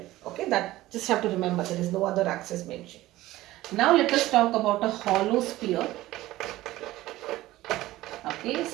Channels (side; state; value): left; quieter; 16.7 dB